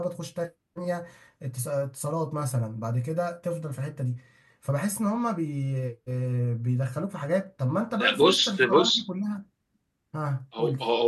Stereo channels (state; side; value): identical; both; correlation 1.00